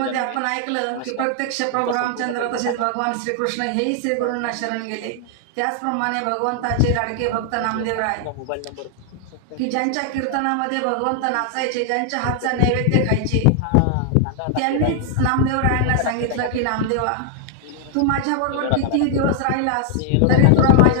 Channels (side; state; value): both; different; correlation 0.00